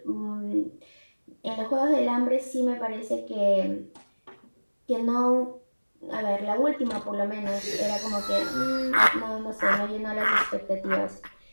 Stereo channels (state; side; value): inverted; both; correlation -1.00